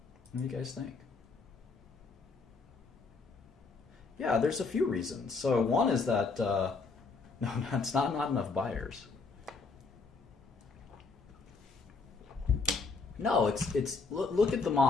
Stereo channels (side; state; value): right; quieter; 4.3 dB